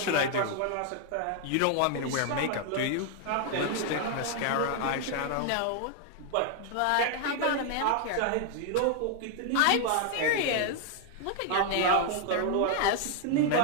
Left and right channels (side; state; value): both; different; correlation 0.00